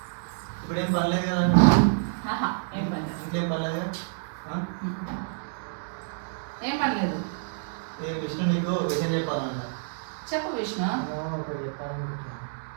ఇప్పుడు ఏం పర్లేదు కదా? ఇంకేం పర్లేదు కదా? ఏం పర్లేదు. విష్ణు నీకు విషయం చెప్పాలంట. చెప్పు విష్ణు. ఒకటి చెప్పాలనుకుంటున్నా.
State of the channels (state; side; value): silent; left; 59 dB below the other